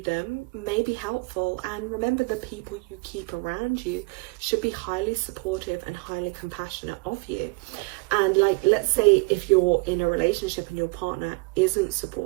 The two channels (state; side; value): quieter; left; 27.7 dB